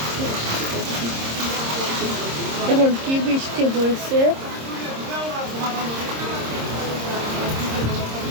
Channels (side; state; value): left; late; 26 ms